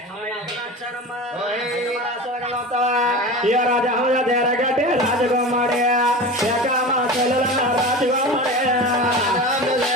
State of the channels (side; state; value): both; normal; correlation 0.31